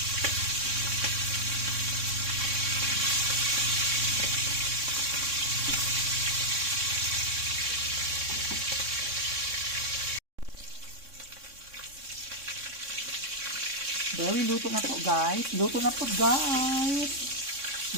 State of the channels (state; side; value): late; left; 3.6 ms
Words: Very luto na po guys. Luto na po guys.